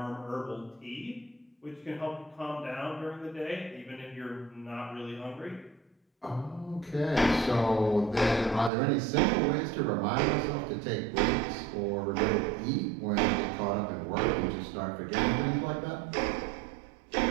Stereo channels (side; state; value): left; drops out; at 8.7 s